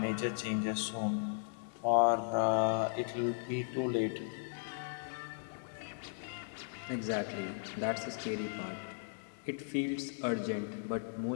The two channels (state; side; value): silent; right; digital silence